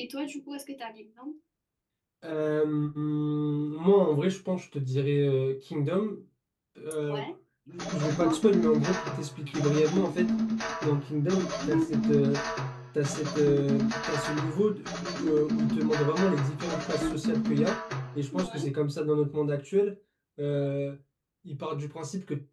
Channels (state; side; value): identical; both; correlation 1.00